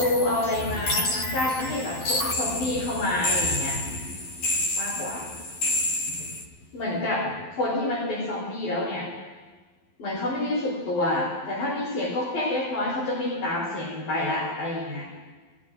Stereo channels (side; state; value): right; late; 12 ms